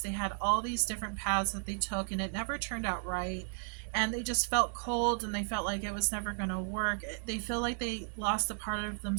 They had all these different paths that they took, and it never turned out right. And they just felt cold, and they felt like it was never going to work. They feel like they lost a part of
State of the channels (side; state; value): left; silent; digital silence